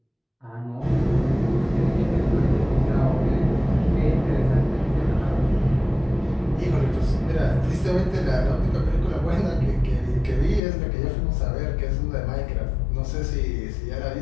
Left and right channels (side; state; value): right; drops out; at 10.6 s